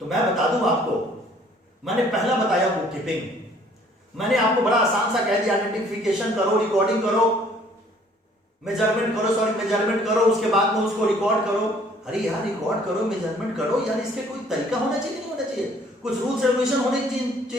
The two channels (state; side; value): normal; both; correlation 0.58